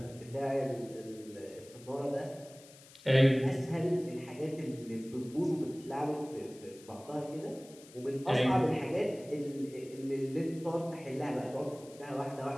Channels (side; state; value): left; noise; hiss, 21 dB below the sound